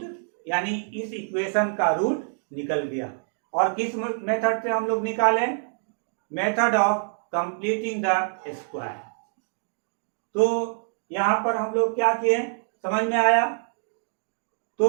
यानी इस इक्वेशन का रूट निकल गया। और किस मेथड से हम लोग निकालें, method of completing the square. तो यहाँ पर हम लोग क्या किए, समझ में आया। तो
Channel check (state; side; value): silent; left; 61 dB below the other